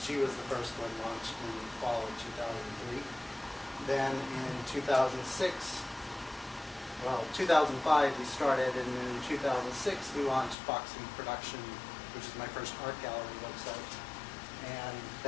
she was the first one launched in the fall of 2003. Then in 2005 we started, and then in 2006 we launched Foxy Production, which is my first art gallery website. And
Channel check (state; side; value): drops out; right; at 10.6 s